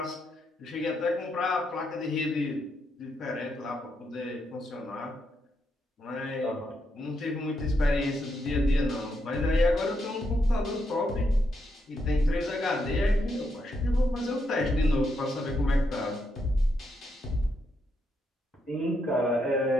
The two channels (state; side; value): normal; both; correlation 0.80